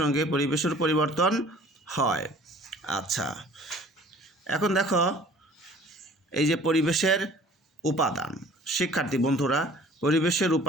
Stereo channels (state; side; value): normal; both; correlation 0.50